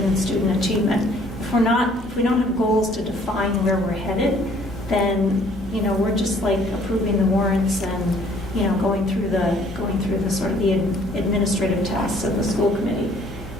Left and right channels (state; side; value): normal; both; correlation 0.59